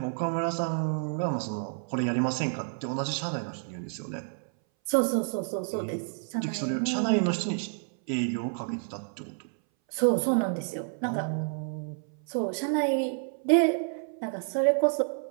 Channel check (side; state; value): left; silent; 58 dB below the other